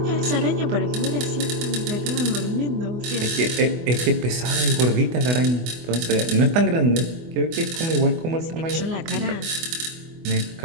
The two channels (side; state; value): left; late; 24 ms